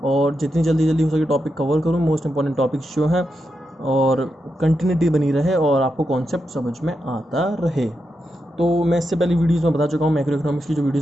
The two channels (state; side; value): normal; both; correlation 0.86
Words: और जितनी जल्दी जल्दी हो सके टॉपिक कवर करूँ, मोस्ट इंपॉर्टेंट टॉपिक्स जो हैं, और कंटिन्यूटी बनी रहे और आपको कॉन्सेप्ट समझ में आता रहे। तो मैं इससे पहले वीडियोस में बता चुका हूँ, मैक्रो इकोनॉमिक्स की जो